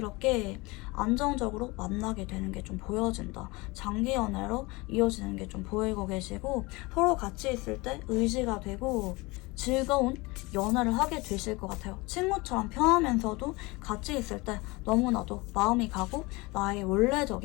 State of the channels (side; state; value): right; quieter; 24.0 dB